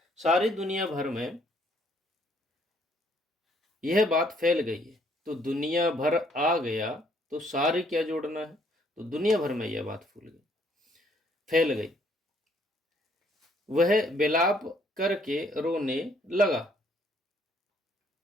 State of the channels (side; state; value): both; normal; correlation 0.66